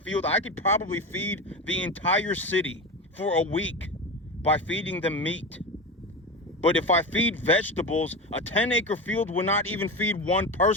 I could probably feed the entire city for a week by feeding them meat. But if I feed vegetables, a 10-acre field will not even feed one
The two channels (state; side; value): normal; both; correlation 0.23